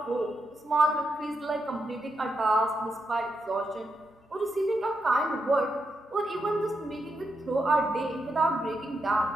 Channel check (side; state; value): both; normal; correlation 0.84